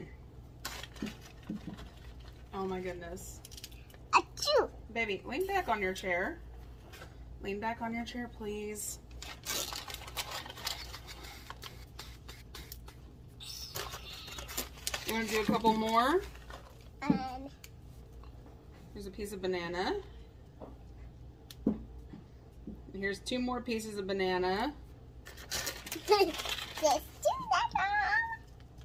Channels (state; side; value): identical; both; correlation 1.00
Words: Oh my goodness. Achoo. Baby, lean back on your chair. Lean back on your chair, please. You want to do a couple more? Um, Here's a piece of banana. And here's 2 more pieces of banana. just do that.